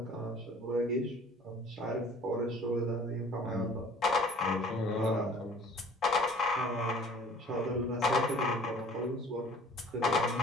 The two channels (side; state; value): both; normal; correlation 0.50